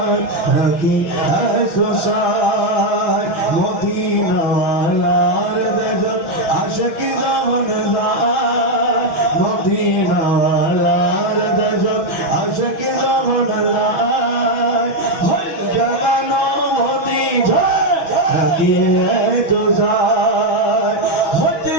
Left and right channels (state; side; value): late; right; 6.2 ms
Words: রাখি তো সাই মদিনাওয়ালার দেশ আশিক যখন যায় মদিনাওয়ালার দেশ আশিক যখন যায় ভুল জাগানো মদিনা রাখি তো সাই হতে